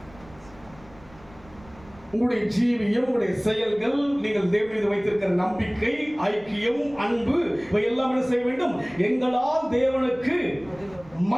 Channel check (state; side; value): noise; right; rumble, 24 dB below the sound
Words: உங்களுடைய ஜீவியம், உங்களுடைய செயல்கள், நீங்கள் தேவன் மீது வைத்திருக்கிற நம்பிக்கை, ஐக்கியம், அன்பு, இவை எல்லாம் என்ன செய்ய வேண்டும்? எங்களால் தேவனுக்கு